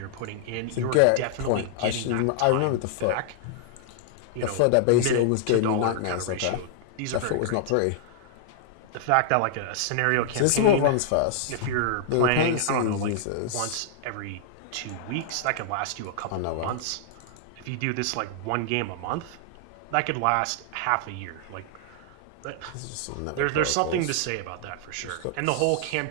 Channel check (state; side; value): different; both; correlation -0.01